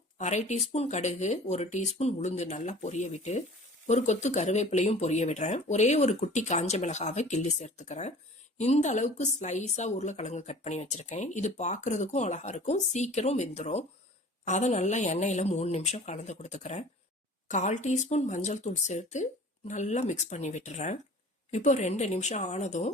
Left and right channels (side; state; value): both; normal; correlation 0.45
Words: 1/2 டீஸ்பூன் கடுகு, 1 டீஸ்பூன் உளுந்து நல்லா பொரிய விட்டு ஒரு கொத்து கருவேப்பிலையும் பொரிய விடுறேன். ஒரே ஒரு குட்டி காஞ்ச மிளகாவை கிள்ளி சேர்த்துக்கிறேன். இந்த அளவுக்கு ஸ்லைஸா உருளைக்கிழங்கு கட் பண்ணி வச்சிருக்கேன். இது பார்க்கறதுக்கும் அழகா இருக்கும், சீக்கிரம் வெந்துடும். அதை நல்லா எண்ணெயில 3 நிமிஷம் கலந்து கொடுத்துக்கிறேன். 1/4 டீஸ்பூன் மஞ்சள் தூள் சேர்த்து நல்லா மிக்ஸ் பண்ணி விட்டுறேன். இப்போ 2 நிமிஷம் ஆனதும்